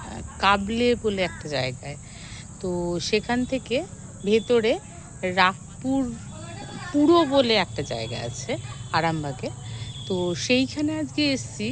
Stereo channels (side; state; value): both; identical; correlation 1.00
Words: কাবলে বলে একটা জায়গায়। তো সেখান থেকে ভেতরে রাগপুর পুরো বলে একটা জায়গা আছে আরামবাগে। তো সেইখানে আজকে এসেছি।